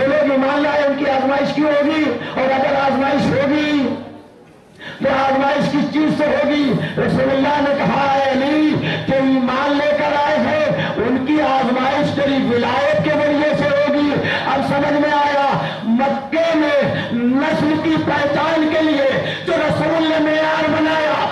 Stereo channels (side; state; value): both; identical; correlation 1.00